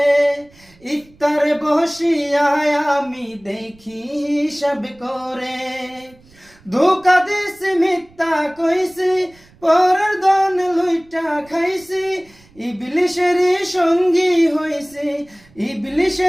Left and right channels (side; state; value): right; noise; rumble, 29 dB below the sound